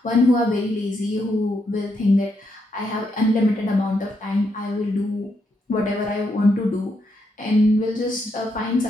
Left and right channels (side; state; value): both; normal; correlation 0.79